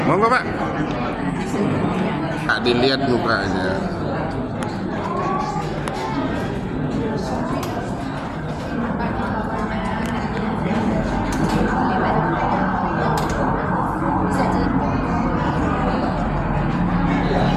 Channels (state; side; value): identical; both; correlation 1.00